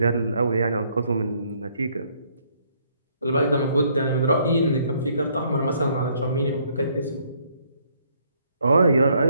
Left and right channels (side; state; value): both; inverted; correlation -0.67